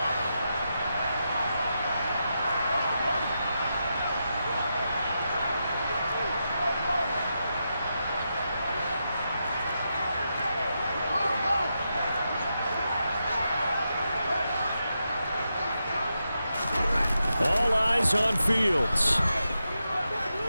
All eyes on Fields.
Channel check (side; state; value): both; inverted; correlation -0.86